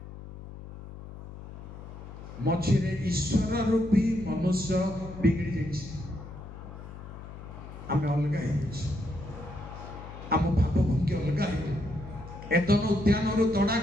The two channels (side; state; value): left; noise; hum, 13 dB below the sound